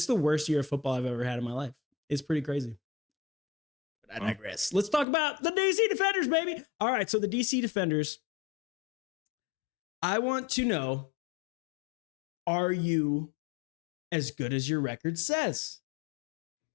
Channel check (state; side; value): drops out; right; at 5.1 s